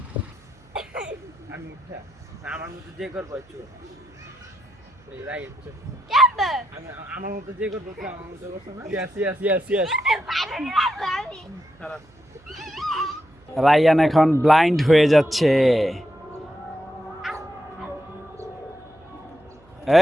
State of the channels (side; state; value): right; noise; hum, 28 dB below the sound